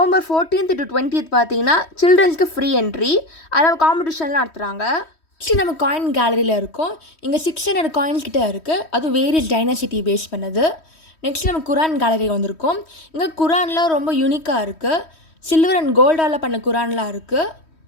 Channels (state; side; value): late; right; 3.1 ms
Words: 14th to 20th பார்த்தீங்கன்னா சில்ட்ரன்ஸ்க்கு ஃப்ரீ என்ட்ரி. அதில் காம்படிஷன்லாம் நடத்துகிறாங்க. நெக்ஸ்ட் நம்ம காயின் கேலரியில் இருக்கோம். இங்கே 600 காயின்ஸ் கிட்டே இருக்குது. அது வேரியஸ் டைனாசிட்டி பேஸ் பண்ணது. நெக்ஸ்ட் நம்ம குரான் கேலரி வந்திருக்கோம். இங்கே குரான்லாம் ரொம்ப யூனிக்காக இருக்குது. சில்வர் அண்ட் கோல்டால் பண்ண குரான்லாம் இருக்குது.